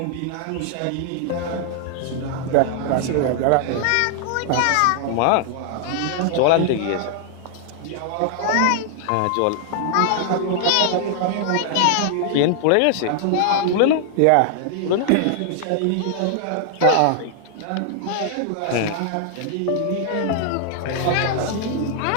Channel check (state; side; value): different; both; correlation 0.00